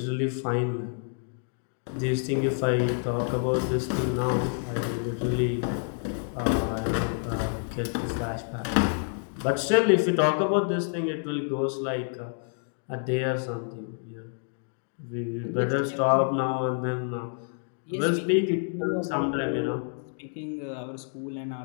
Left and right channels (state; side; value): silent; right; 59 dB below the other